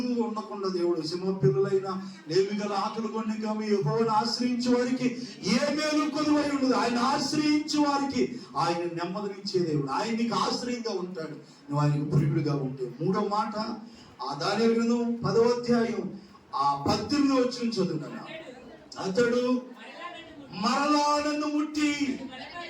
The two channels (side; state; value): both; identical; correlation 1.00